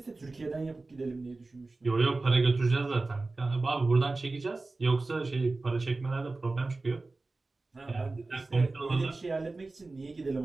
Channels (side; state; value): left; quieter; 3.4 dB